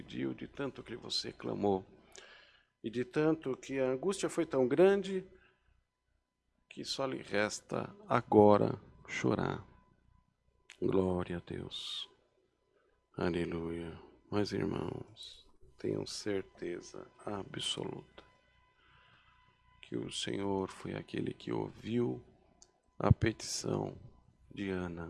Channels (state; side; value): identical; both; correlation 1.00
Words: de tanto que você clamou, e de tanto que a angústia foi tão grande, que só lhe resta agora chorar. Glória a Deus. Aleluia. Mas, irmãos, tenham certeza absoluta que o Senhor foi aquele que ouviu a petição de